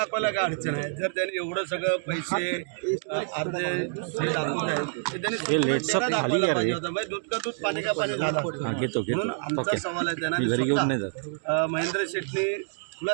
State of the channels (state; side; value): silent; left; digital silence